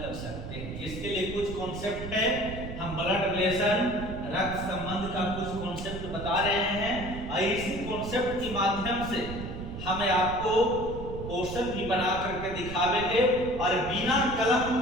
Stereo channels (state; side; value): noise; right; rumble, 8 dB below the sound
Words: सकते हैं। इसके लिए कुछ कॉन्सेप्ट है, हम ब्लड रिलेशन रक्त संबंध का कुछ कॉन्सेप्ट बता रहे हैं और इसी कॉन्सेप्ट के माध्यम से हमें आपको क्वेश्चन भी बना करके दिखावेंगे और बिना कलम